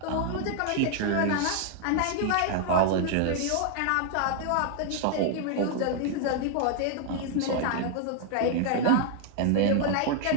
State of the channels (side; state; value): both; different; correlation 0.00